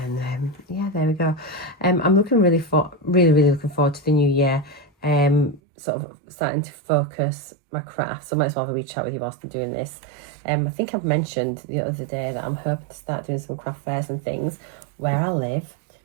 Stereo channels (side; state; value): left; drops out; at 5.6 s